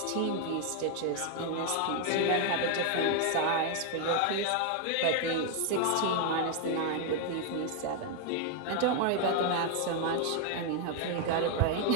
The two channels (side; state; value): both; different; correlation 0.00